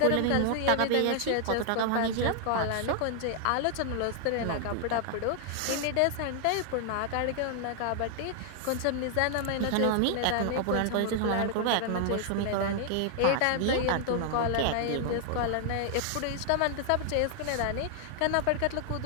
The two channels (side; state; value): both; different; correlation 0.00